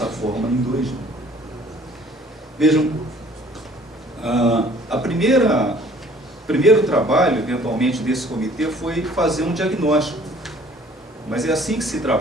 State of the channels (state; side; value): normal; both; correlation 0.54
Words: forma em 2000. Vejam, primeiro trabalho, eventualmente, desse comitê foi fazer um diagnóstico. Mas é assim que se